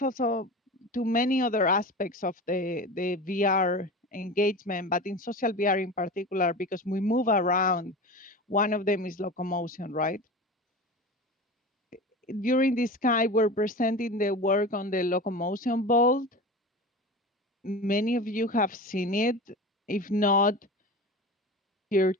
to many other aspects of the VR engagement, but in social VR in particular, because we move around. One of them is locomotion, right? During this Sky, we're presenting the work on the locomotion bolt. Many of you have seen it. If not, here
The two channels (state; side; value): normal; both; correlation 0.31